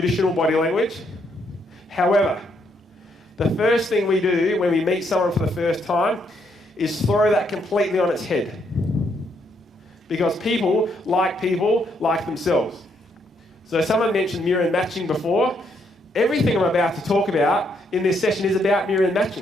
body language. However, the first thing we do when we meet someone for the first time is throw that completely on its head. Because people like themselves. So someone mentioned mirror and matching before. Everything I'm about to talk about in this session is about mirror and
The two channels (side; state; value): both; normal; correlation 0.74